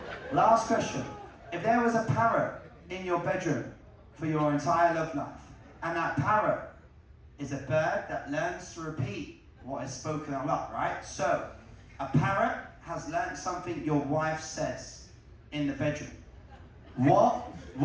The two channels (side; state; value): both; identical; correlation 1.00